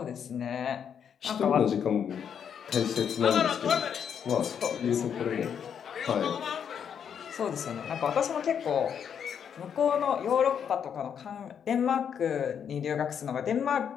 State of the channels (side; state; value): right; quieter; 7.9 dB